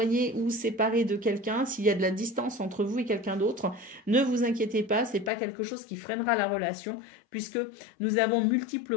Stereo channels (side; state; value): right; drops out; at 5.3 s